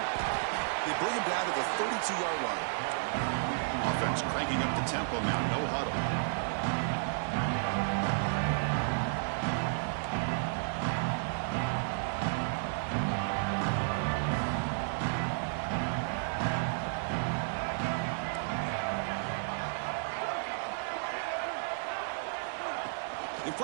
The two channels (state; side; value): silent; left; digital silence